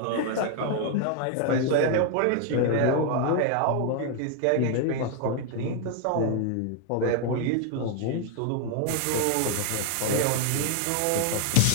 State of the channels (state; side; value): different; both; correlation 0.00